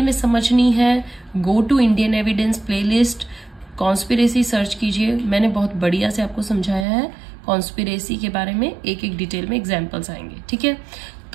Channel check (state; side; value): drops out; left; at 6.9 s